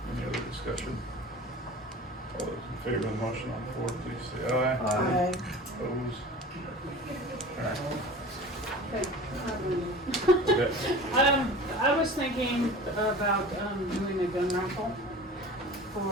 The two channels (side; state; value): both; normal; correlation 0.38